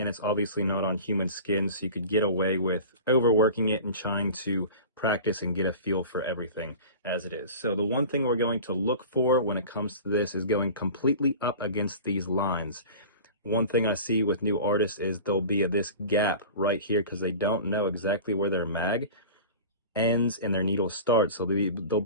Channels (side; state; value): both; inverted; correlation -0.36